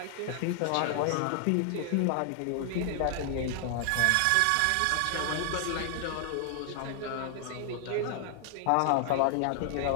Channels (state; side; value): different; both; correlation 0.00